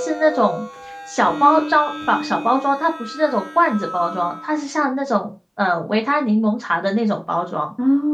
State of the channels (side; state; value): both; identical; correlation 1.00